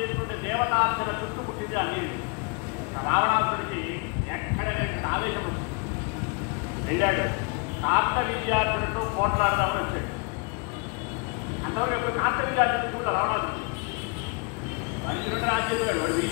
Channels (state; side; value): quieter; right; 32.5 dB